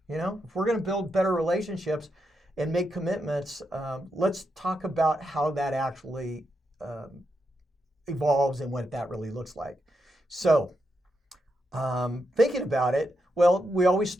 If we're going to build better relationships and make commitments, let's talk about how that actually um, evolves and what that really looks like. So, thinking about it, well, we always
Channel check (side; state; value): both; normal; correlation 0.84